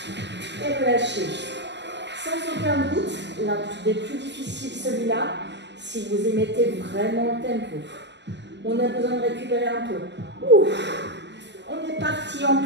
et relâchez. Sans aucun doute, l'un des plus difficiles, celui-là, si vous y mettez vraiment le tempo. On a besoin de récupérer un peu. Ouf. On est parti en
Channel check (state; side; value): late; left; 0.51 ms